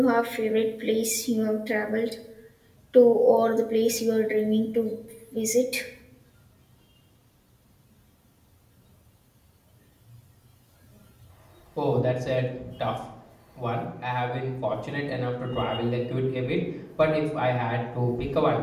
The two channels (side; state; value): both; identical; correlation 1.00